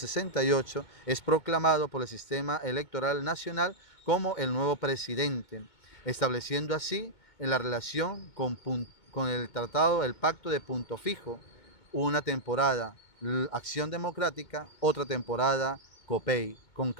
es proclamado por el sistema electoral nacional como el nuevo presidente, estableciendo así en la relación con el tratado, el pacto de Punto Fijo, una temporada Acción Democrática, otra temporada COPEI. Con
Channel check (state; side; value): late; right; 2.2 ms